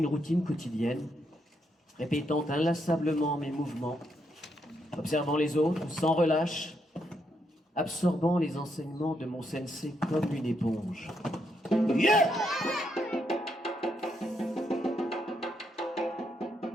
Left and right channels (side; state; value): both; normal; correlation 0.78